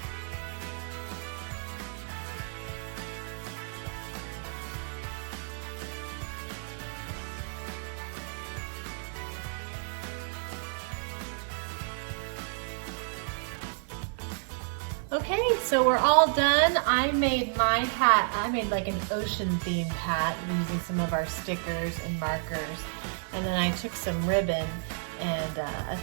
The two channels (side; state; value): left; silent; digital silence